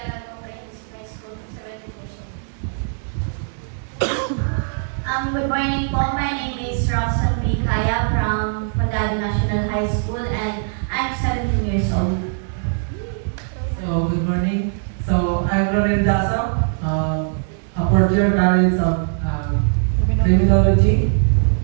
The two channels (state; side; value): silent; left; digital silence